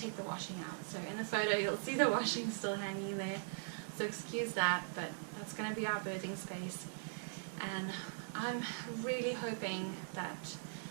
the washing out. So in the photo you'll see the washing still hanging there, so excuse that, but that's going to be our birthing space. And I'm really hoping that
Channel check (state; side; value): silent; left; 51 dB below the other